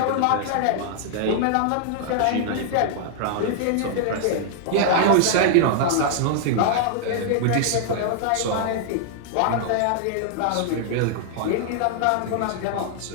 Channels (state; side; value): different; both; correlation -0.01